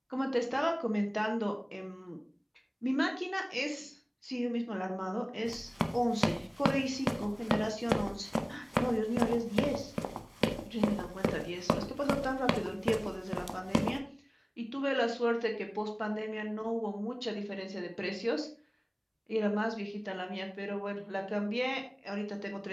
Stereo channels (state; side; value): identical; both; correlation 1.00